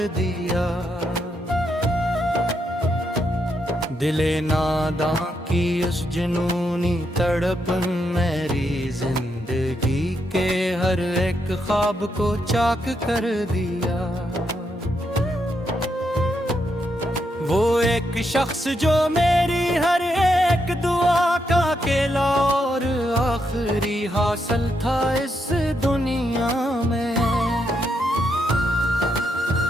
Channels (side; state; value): both; normal; correlation 0.80